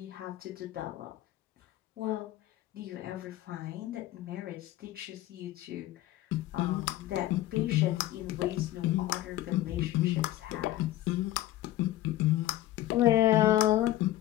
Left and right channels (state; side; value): quieter; right; 14.9 dB